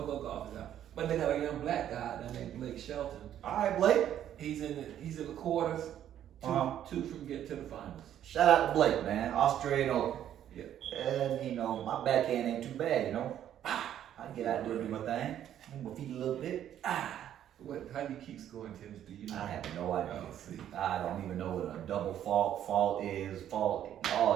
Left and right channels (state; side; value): quieter; left; 10.7 dB